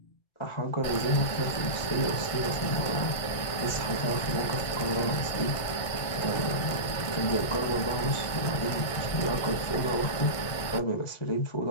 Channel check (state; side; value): late; right; 1.6 ms